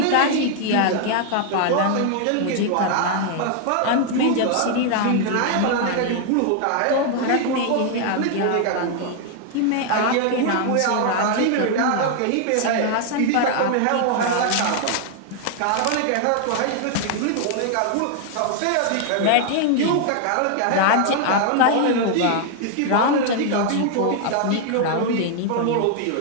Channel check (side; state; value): both; different; correlation 0.00